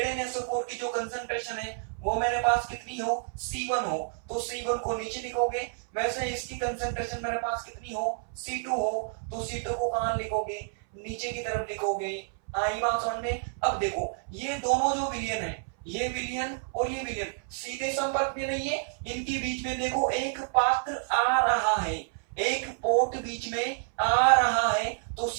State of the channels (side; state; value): left; silent; 58 dB below the other